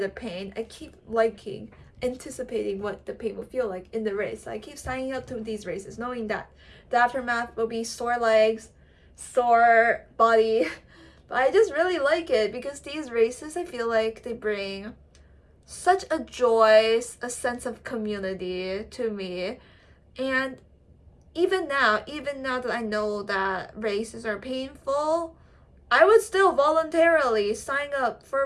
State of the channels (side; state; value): both; identical; correlation 1.00